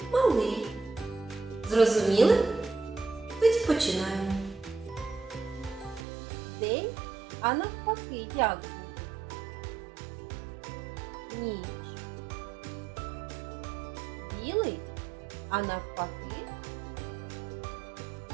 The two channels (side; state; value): left; drops out; at 6.0 s